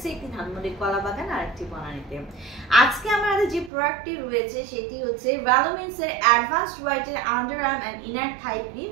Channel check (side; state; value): left; drops out; at 3.7 s